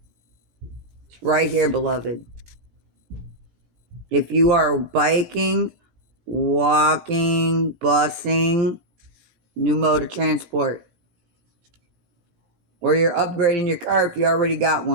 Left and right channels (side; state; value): left; late; 17 ms